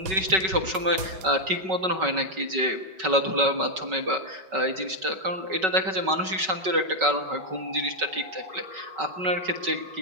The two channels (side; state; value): left; late; 5.3 ms